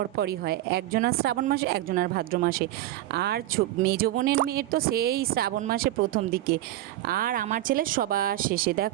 হয়, একজনের শ্রাবণ মাসে একজনের ভাদ্র মাসে, আর মেজো বোনের মেয়ের তো সেই শ্রাবণ মাসে প্রথম দিকে, আর আমার ছেলে সবার শেষে।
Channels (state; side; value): quieter; left; 14.8 dB